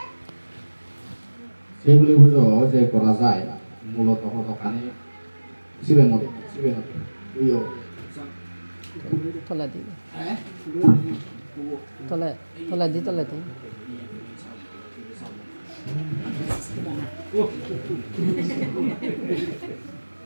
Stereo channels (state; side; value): inverted; both; correlation -1.00